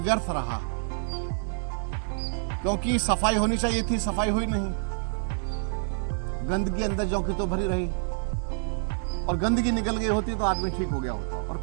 रहा, क्योंकि सफाई होनी चाहिए थी, सफाई हुई नहीं। गंदगी अंदर जो की तो भरी रही, और गंदगी निकल गई होती तो आदमी ठीक हो गया होता, और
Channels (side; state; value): left; silent; digital silence